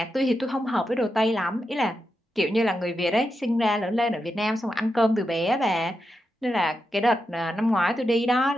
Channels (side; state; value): both; normal; correlation 0.87